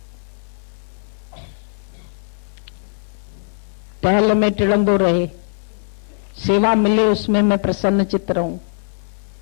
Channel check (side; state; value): right; silent; 58 dB below the other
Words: टहल में टिड़ंदो रहे, सेवा मिले उसमें मैं प्रसन्न चित्त रहूं।